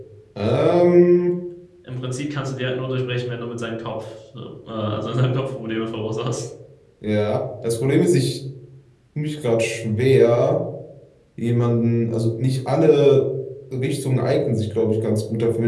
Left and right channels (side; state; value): both; identical; correlation 1.00